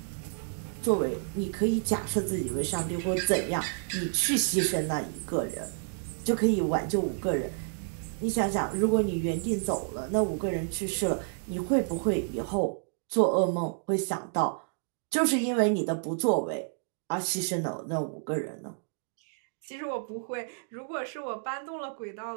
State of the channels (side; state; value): left; silent; digital silence